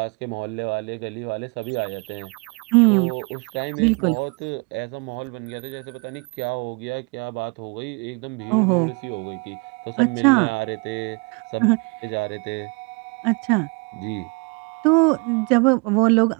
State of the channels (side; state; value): left; quieter; 31.9 dB